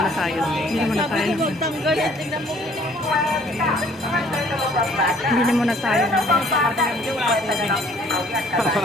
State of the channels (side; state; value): both; normal; correlation 0.58